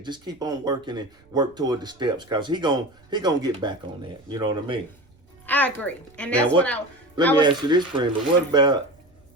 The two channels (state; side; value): noise; right; rumble, 30 dB below the sound